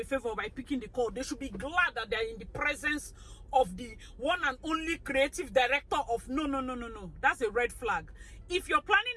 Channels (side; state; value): both; identical; correlation 1.00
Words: favor by picking the call? They should be glad that they're in the presence of the one and only creative director of no. That's a red flag. If you're planning